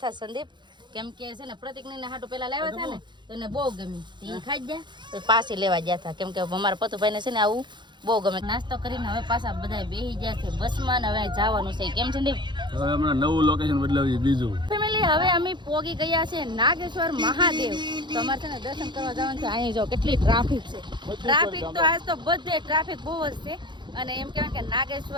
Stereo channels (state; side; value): late; left; 0.22 ms